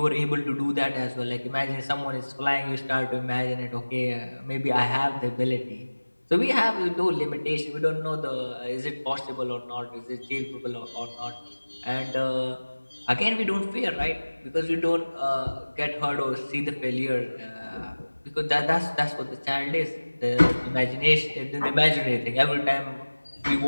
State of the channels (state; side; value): inverted; both; correlation -1.00